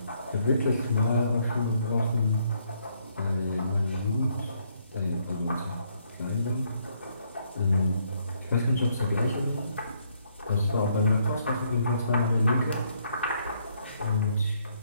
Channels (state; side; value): inverted; both; correlation -0.71